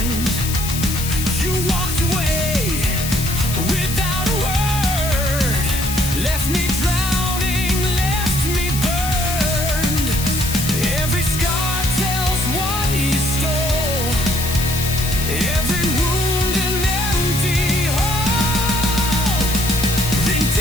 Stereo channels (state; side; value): noise; left; hiss, 5 dB below the sound